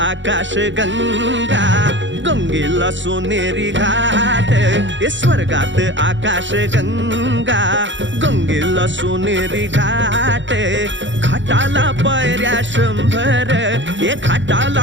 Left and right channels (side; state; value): left; late; 0.54 ms